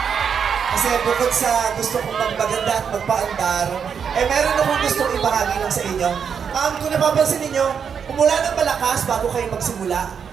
Kasi bukod sa gusto kong magpaganda at magpaandar, meron akong gustong ibahagi lang sa inyo. Kung napapansin ninyo, umulan ng malakas bago kayo magsimula.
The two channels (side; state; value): left; quieter; 7.0 dB